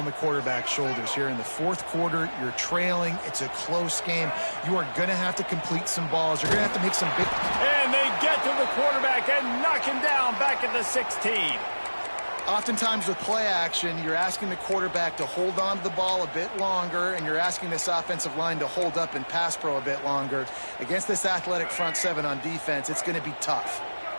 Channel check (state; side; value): inverted; both; correlation -1.00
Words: the quarterback's shoulders here in the fourth quarter. You're trailing. It's a close game. You are going to have to complete some balls. You're going to have to make some big... And they get to the quarterback and knock him down back at the 16. Oftentimes with play action, you're asking the quarterback to hold on to the ball a bit longer, and you're asking this offensive line to hold up in pass pro a bit longer. Against this athletic front 7 on defense, it's going to be tough.